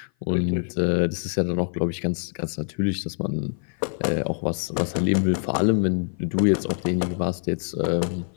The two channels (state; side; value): silent; right; 55 dB below the other